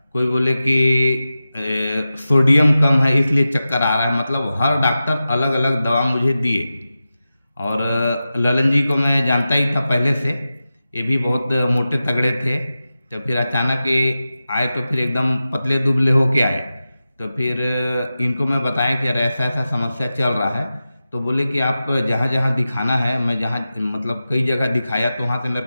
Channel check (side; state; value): both; inverted; correlation -0.93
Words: कोई बोले कि सोडियम कम है इसलिए चक्कर आ रहा है। मतलब हर डॉक्टर अलग अलग दवा मुझे दिए। और ललन जी को मैं जानता ही था पहले से, ये भी बहुत मोटे तगड़े थे। तो फिर अचानक ये आए तो फिर एकदम पतले दुबले होके आए। तो फिर इनको मैं बताया कि यार ऐसा ऐसा समस्या चल रहा है। तो बोले कि आप जहाँ जहाँ दिखाना है, मैं जहाँ मतलब कई जगह दिखाया तो वहाँ से मेरे